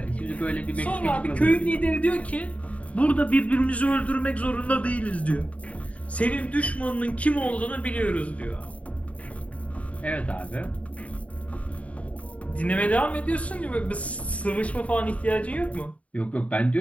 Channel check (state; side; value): late; right; 0.067 ms